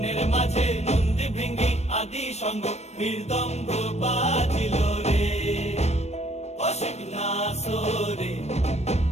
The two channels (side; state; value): right; late; 0.31 ms